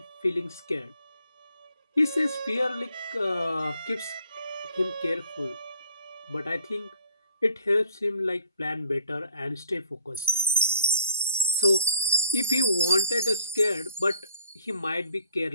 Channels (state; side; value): inverted; both; correlation -0.58